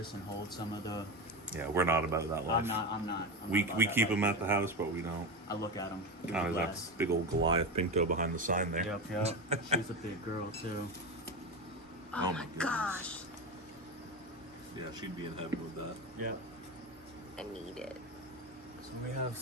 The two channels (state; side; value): normal; both; correlation 0.19